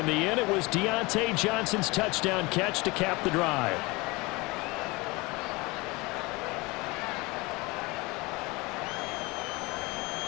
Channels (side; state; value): right; quieter; 24.3 dB